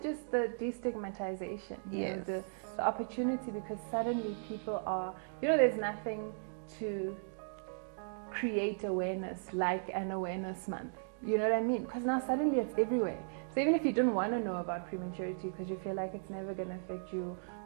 just the destigmatization. Yes. The opportunity, because suddenly people are, there's nothing to create awareness like an awareness month. You know what I mean? Because now suddenly it's everywhere. So even if you didn't want to know about prematurity because you feel like it's never going to affect you,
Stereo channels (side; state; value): left; silent; digital silence